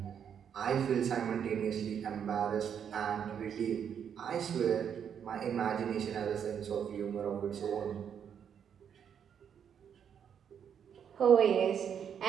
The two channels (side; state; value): left; quieter; 8.1 dB